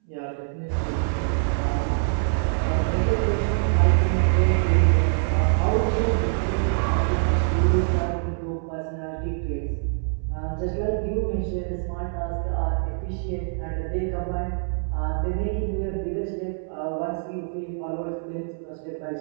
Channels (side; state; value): left; silent; 62 dB below the other